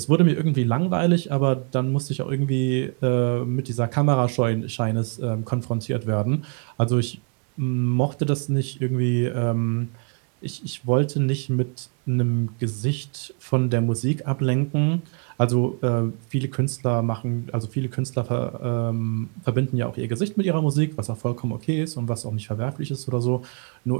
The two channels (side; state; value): left; quieter; 38.5 dB